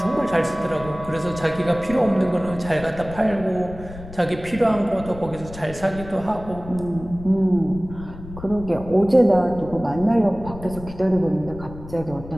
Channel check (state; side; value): noise; left; rumble, 14 dB below the sound